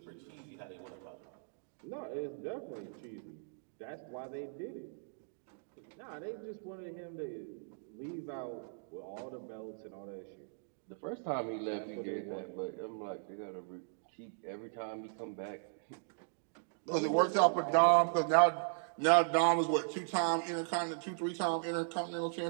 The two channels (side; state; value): left; silent; digital silence